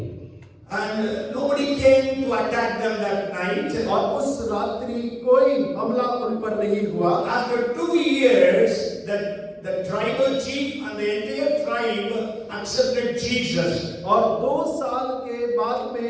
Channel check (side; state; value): both; identical; correlation 1.00